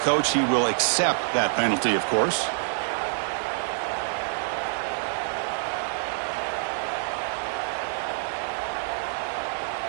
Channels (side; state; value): left; silent; 61 dB below the other